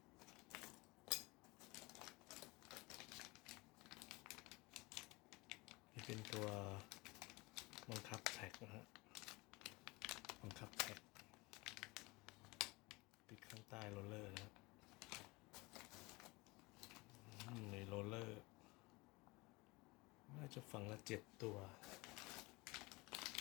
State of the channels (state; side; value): quieter; right; 24.3 dB